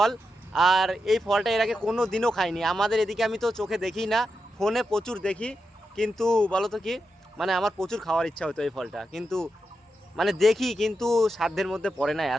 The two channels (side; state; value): both; normal; correlation 0.87